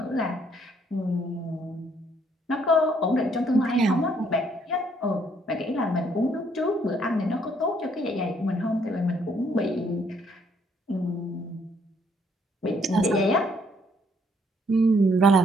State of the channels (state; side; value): normal; both; correlation 0.67